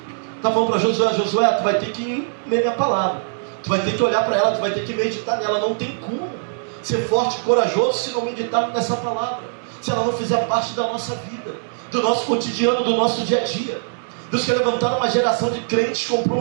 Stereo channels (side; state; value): left; silent; digital silence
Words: Está falando para Josué, Josué, tu vai ter que ler minha palavra, tu vai ter que olhar para ela, tu vai ter que meditar nela. Não tem como ser forte e corajoso se não meditar nessa palavra, se ela não fizer parte da nossa vida, do nosso cotidiano, do nosso dia a dia. Deus quer levantar uma geração de crentes